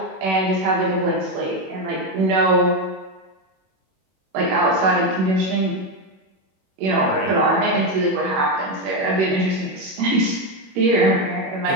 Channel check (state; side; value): late; left; 21 ms